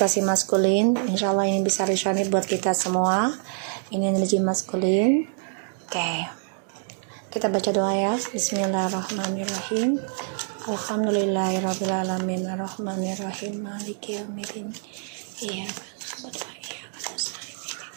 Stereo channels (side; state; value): left; silent; 61 dB below the other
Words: maskulin. Insya Allah ini bisa resonate buat kita semua. Ini energi maskulin. Oke, kita baca doa ya. Bismillahirrahmanirrahim. Alhamdulillahirrahmanirrahim. Ar-Rahmanirrahim. Maliki yaumiddin. Iya kan.